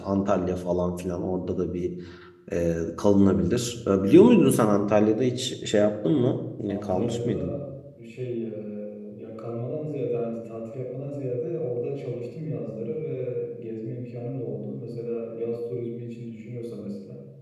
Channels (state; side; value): identical; both; correlation 1.00